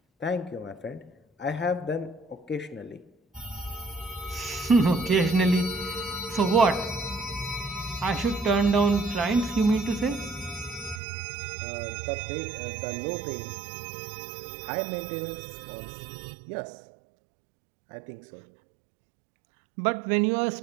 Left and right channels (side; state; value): left; drops out; at 11.0 s